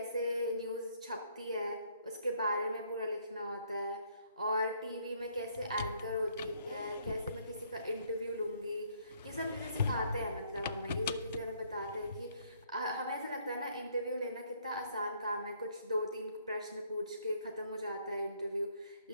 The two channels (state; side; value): inverted; both; correlation -0.67